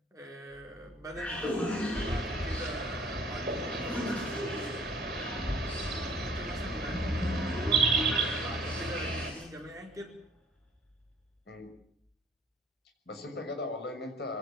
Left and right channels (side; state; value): both; normal; correlation 0.54